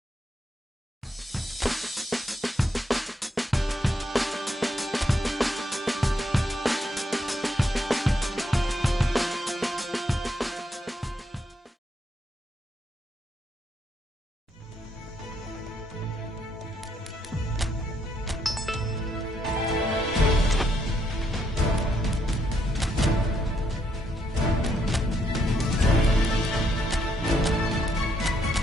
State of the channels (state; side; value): normal; both; correlation 0.75